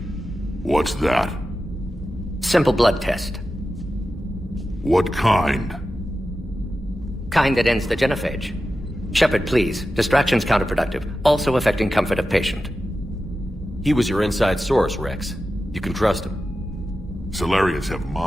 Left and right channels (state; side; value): normal; both; correlation 0.92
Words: What's that? Simple blood test. What kind? Kind that ends the genophage. Shepard, please. Distraction's counterproductive, also affecting comfort of patient. He was your inside source, Rex. You can trust him. Solarians have